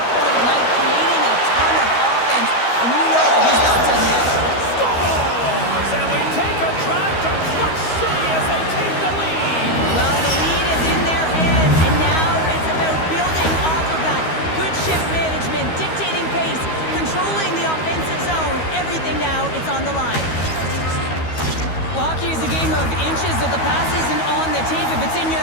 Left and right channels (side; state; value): right; late; 13 ms